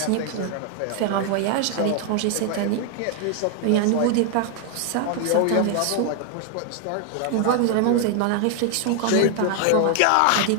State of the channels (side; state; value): both; different; correlation 0.00